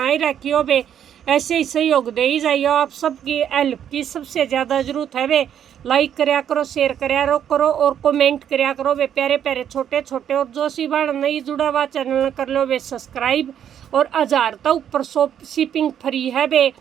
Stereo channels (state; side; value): quieter; left; 9.4 dB